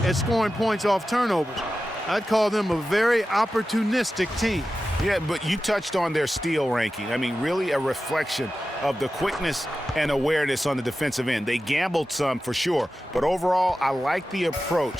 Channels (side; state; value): both; normal; correlation 0.93